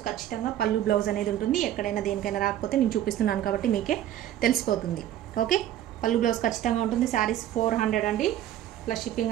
ఖచ్చితంగా పళ్ళు బ్లౌజ్ అనేది ఉంటుంది. ఎక్కడైనా దేనికైనా రాకపోతే నేను చూపిస్తున్నాను కాబట్టి మీకే తెలిసిపోతుంది, ఓకే. పళ్ళు బ్లౌజ్ ఖచ్చితంగా ఉంటుంది. శారీస్ 400 అండి, ప్లస్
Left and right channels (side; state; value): left; quieter; 12.0 dB